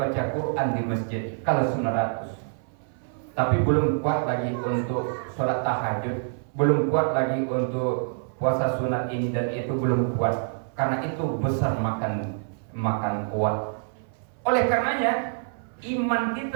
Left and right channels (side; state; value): left; silent; 57 dB below the other